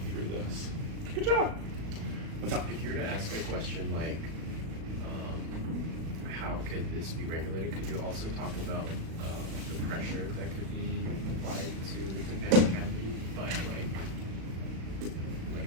through this. Good job. What's up? If you were to ask a question like, how could this be regulated, could you also talk about the pressure that could be applied to the tympanic cavity by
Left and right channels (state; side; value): late; left; 37 ms